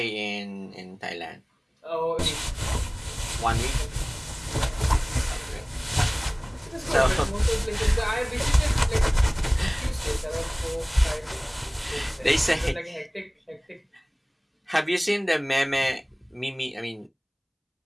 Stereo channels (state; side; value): identical; both; correlation 1.00